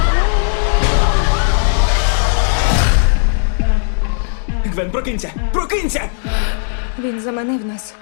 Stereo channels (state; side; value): silent; right; digital silence